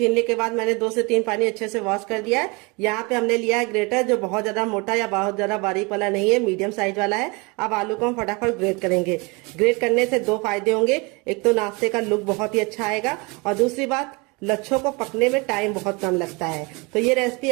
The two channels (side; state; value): left; quieter; 28.2 dB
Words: के बाद मैंने 2 से 3 पानी अच्छे से वॉश कर दिया है। यहाँ पे हमने लिया है ग्रेटर, जो बहुत ज्यादा मोटा या बहुत ज्यादा बारीक वाला नहीं है, मीडियम साइज वाला है। अब आलू को हम फटाफट ग्रेट करेंगे। ग्रेट करने से 2 फायदे होंगे, एक तो नाश्ते का लुक बहुत ही अच्छा आएगा और दूसरी बात लच्छों को पकने में टाइम बहुत कम लगता है। तो ये रेसिपी